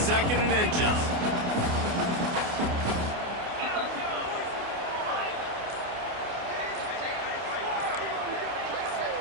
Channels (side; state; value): left; late; 28 ms